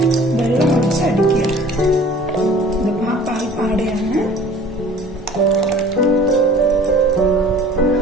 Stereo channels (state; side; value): normal; both; correlation 0.48